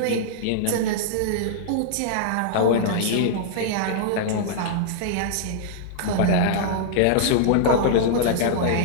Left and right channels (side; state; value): both; different; correlation -0.02